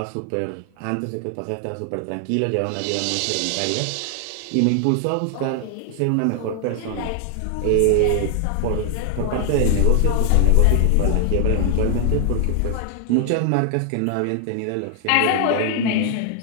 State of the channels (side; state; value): both; different; correlation 0.00